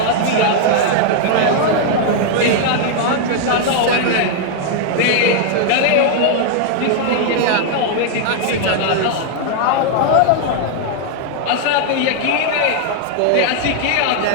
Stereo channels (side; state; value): both; different; correlation 0.00